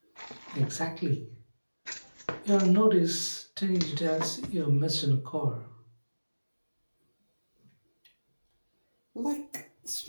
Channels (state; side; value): inverted; both; correlation -1.00